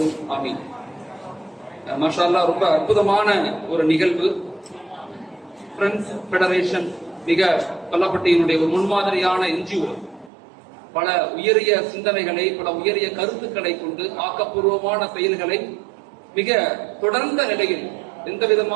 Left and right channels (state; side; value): drops out; left; at 10.3 s